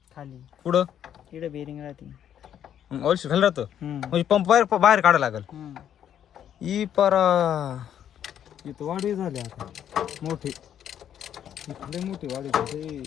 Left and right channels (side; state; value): right; quieter; 9.8 dB